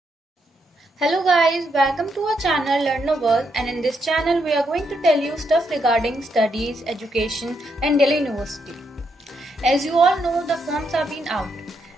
guys, welcome to our channel Learn a World, and in this channel we are going to tell you stuff regarding studies, education and Delhi University. As you all know, the forms have been out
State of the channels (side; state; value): both; normal; correlation 0.78